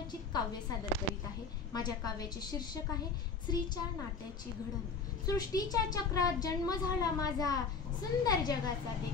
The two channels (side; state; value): right; quieter; 5.0 dB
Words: काव्य सादर करीत आहे। माझ्या काव्याचे शीर्षक आहे स्त्रीच्या नात्याची घडण। सृष्टीच्या चक्रात जन्म झाला माझा, सुंदर जगाचा